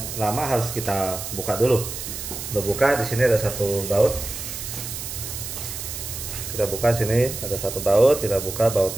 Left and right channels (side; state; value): right; noise; hiss, 7 dB below the sound